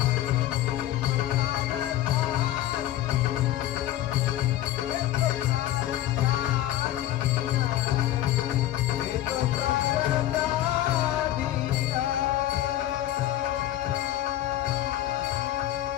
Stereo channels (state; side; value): quieter; right; 13.5 dB